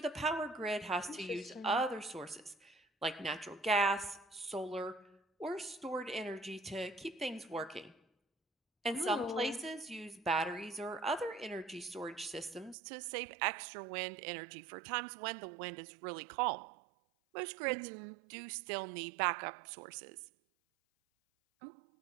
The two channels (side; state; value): left; drops out; at 12.8 s